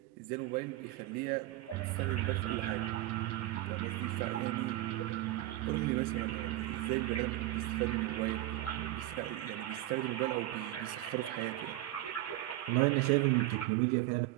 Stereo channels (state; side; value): quieter; left; 16.1 dB